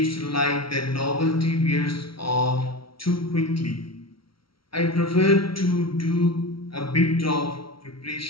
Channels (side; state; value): right; late; 0.75 ms